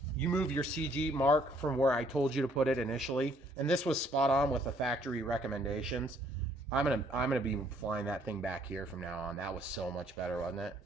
You move your CG mark from where I told you to put it initially. And this was spot on with the factory recommendations. I'm gonna be flying that thing back here from now on. That was so much better, wasn't it?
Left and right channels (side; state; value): both; normal; correlation 0.64